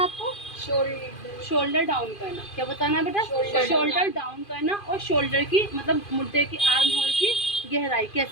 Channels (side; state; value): right; late; 2.5 ms